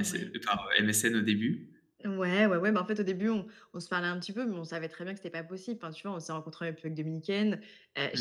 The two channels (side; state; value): both; identical; correlation 1.00